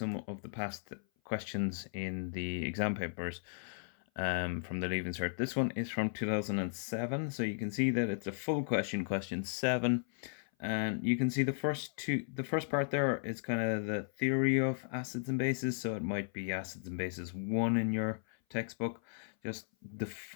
of the past questions in the exam papers from the Leaving Cert, this one is from 2007. So you can see that it's a full question, question 7. And you can see the first part there is kind of the theory of acids and bases. So it might be acids and bases 1 in your textbook. Just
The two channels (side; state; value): right; silent; 54 dB below the other